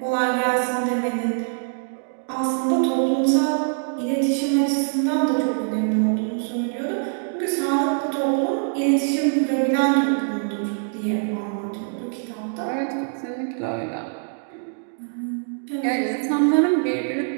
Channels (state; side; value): silent; left; digital silence